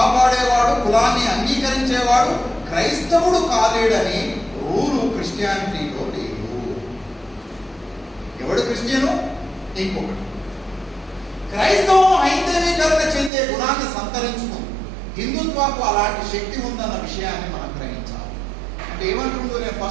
కులాన్ని అంగీకరించేవాడు క్రైస్తవుడు కాలేడని రూలు క్రిస్టియానిటీలో లేదు. ఎవడు క్రిస్టియను? ఇంకొకటి. క్రైస్తవం హైందవీకరణ చెందే గుణాన్ని సంతరించుకుంది. హిందుత్వకు అలాంటి శక్తి ఉందన్న విషయాన్ని మనం గ్రహించాలి. అంటే ఏమంటుందో, నేను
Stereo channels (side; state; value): left; drops out; at 13.3 s